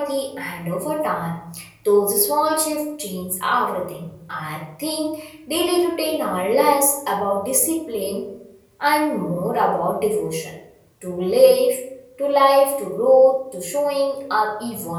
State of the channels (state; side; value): identical; both; correlation 1.00